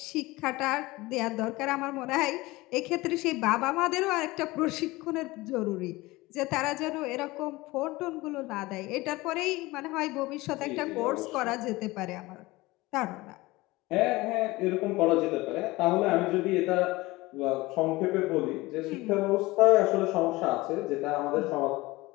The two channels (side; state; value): right; quieter; 20.7 dB